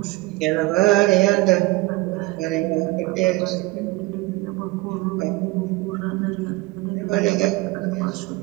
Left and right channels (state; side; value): quieter; left; 21.4 dB